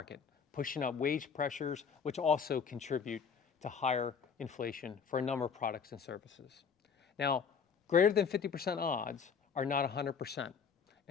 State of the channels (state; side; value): quieter; right; 6.3 dB